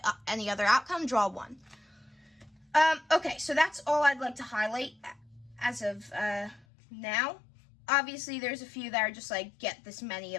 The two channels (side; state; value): right; drops out; at 6.7 s